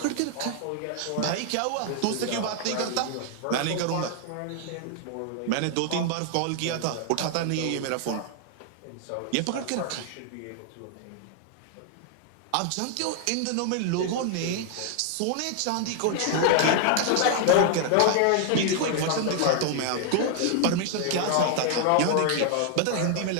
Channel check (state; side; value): different; both; correlation 0.00